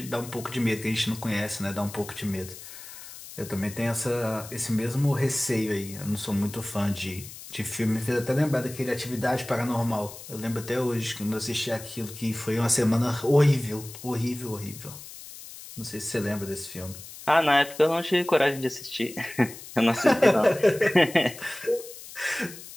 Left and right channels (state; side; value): noise; left; hiss, 14 dB below the sound